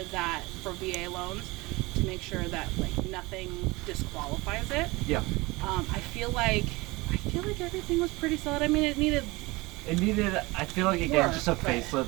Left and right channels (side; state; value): left; quieter; 22.8 dB